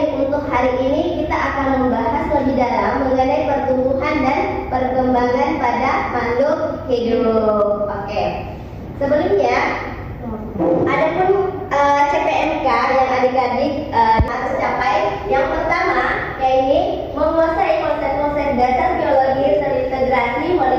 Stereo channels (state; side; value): identical; both; correlation 1.00